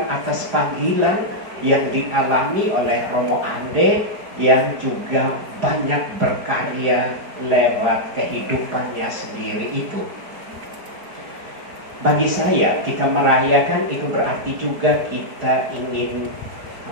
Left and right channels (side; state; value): left; late; 4.9 ms